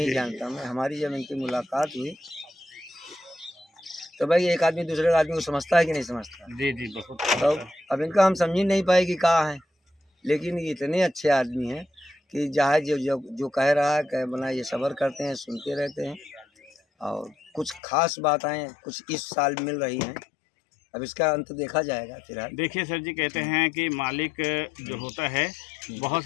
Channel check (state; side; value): drops out; right; at 17.8 s